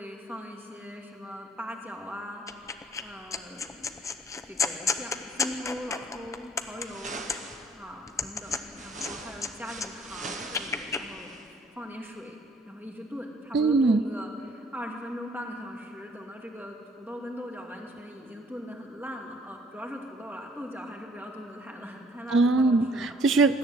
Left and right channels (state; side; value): normal; both; correlation 0.61